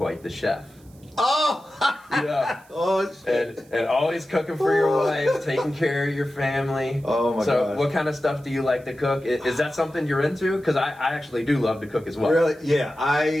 the chef. Oh! Yeah. Oh, shit. And always cooking for your wife, taking care of your family. Oh, my God. So what kind of stuff do you like to cook? Is that something you're into? Because I actually do love to cook as well. Really? Yeah.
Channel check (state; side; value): noise; right; hiss, 29 dB below the sound